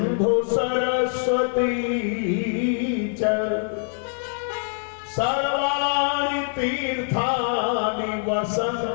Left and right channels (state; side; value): silent; right; digital silence